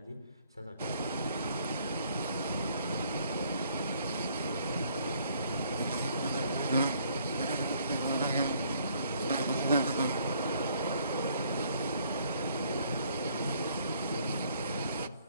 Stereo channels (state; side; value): inverted; both; correlation -0.64